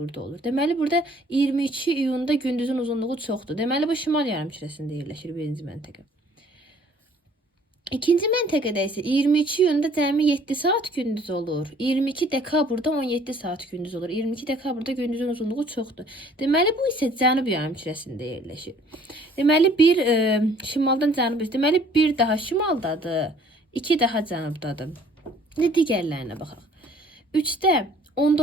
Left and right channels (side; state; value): both; normal; correlation 0.57